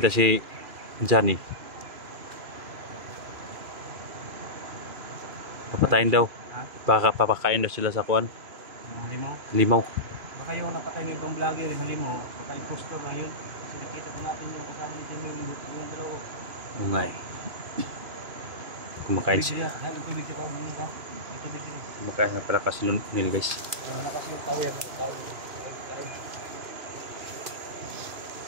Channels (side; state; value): left; late; 2.5 ms